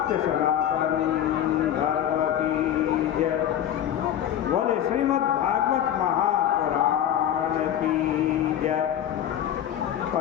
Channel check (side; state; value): right; quieter; 10.6 dB